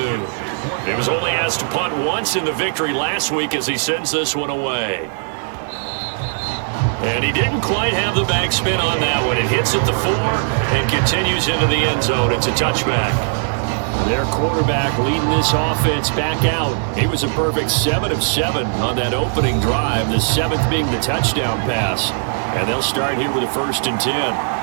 He was only asked to punt once in the victory last week as he sends this one away. And he didn't quite have the backspin on that one. It hits at the 4 and continues into the end zone. It's a touchback. Their quarterback leading this offense back out. He was a perfect 7 of 7 on that opening drive, the 7th being the touchdown pass. And they'll start here with a 1st and 10.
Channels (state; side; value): silent; left; digital silence